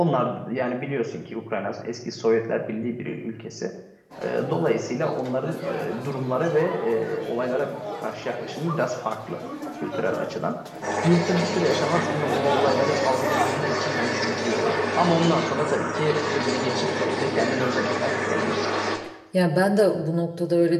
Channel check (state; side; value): identical; both; correlation 1.00